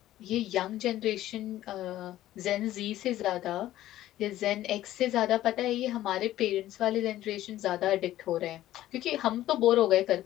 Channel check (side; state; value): right; quieter; 14.1 dB